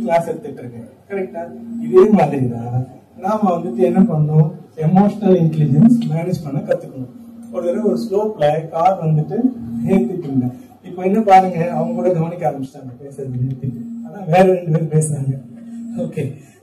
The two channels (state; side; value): identical; both; correlation 1.00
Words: கிளாஸ் எடுத்துட்டு இருக்கேன். கரெக்டா? இதே மாதிரி தான் நாம வந்துட்டு என்ன பண்ணணும், எமோஷனல் இன்டெலிஜென்ஸ் மேனேஜ் பண்ண கத்துக்கணும். ஒரு தடவை ஒரு ஸ்லோப்ல கார் வந்துட்டு ஏத்திட்டு இருந்தேன். இப்ப என்ன பாருங்க, அவங்க கூட கவனிக்க ஆரம்பிச்சிட்டாங்க பேசுறது நிறுத்திட்டு, ஆனா வேற 2 பேர் பேசுறாங்க. ஓகே,